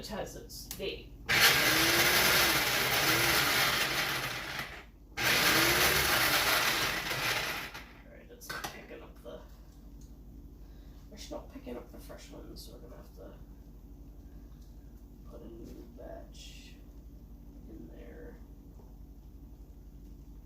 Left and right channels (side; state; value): both; identical; correlation 1.00